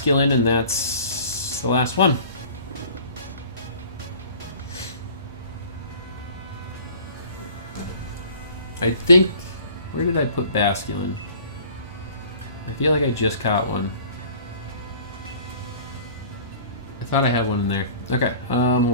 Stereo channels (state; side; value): inverted; both; correlation -0.48